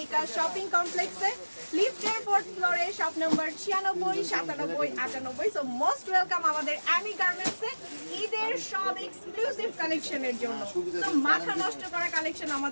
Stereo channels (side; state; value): both; inverted; correlation -1.00